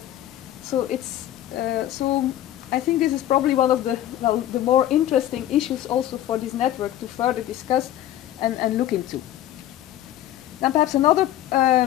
so it's, so I think this is probably one of the more interesting issues also for this network to further discuss and look into. Then perhaps another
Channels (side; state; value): right; quieter; 12.7 dB